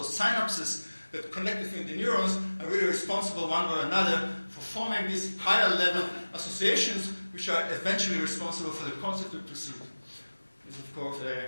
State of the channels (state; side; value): inverted; both; correlation -1.00